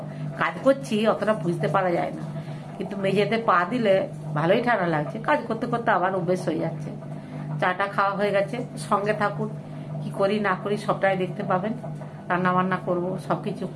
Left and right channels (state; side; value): identical; both; correlation 1.00